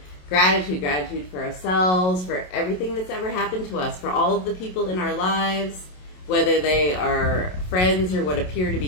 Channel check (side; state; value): right; late; 27 ms